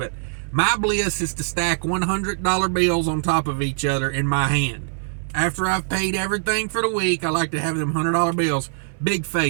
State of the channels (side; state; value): left; silent; digital silence